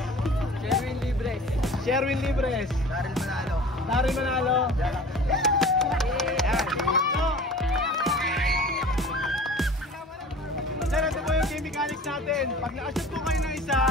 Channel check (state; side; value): normal; both; correlation 0.42